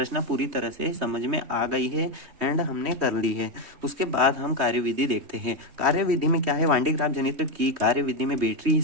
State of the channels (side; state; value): left; late; 3.2 ms